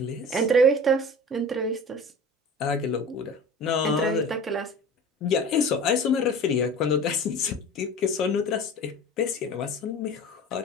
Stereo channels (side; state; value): both; normal; correlation 0.38